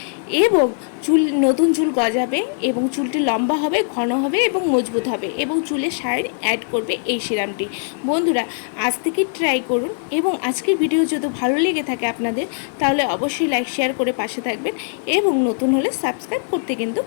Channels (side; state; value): right; silent; 60 dB below the other